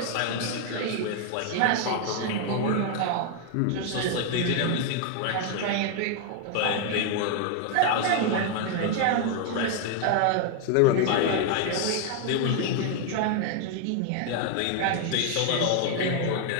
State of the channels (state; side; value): different; both; correlation 0.00